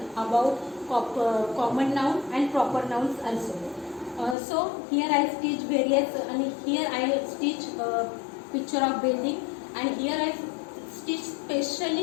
about common noun and proper nouns also. So here I stitch various, and here I stitch picture of building, and here I stitch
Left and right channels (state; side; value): drops out; right; at 4.4 s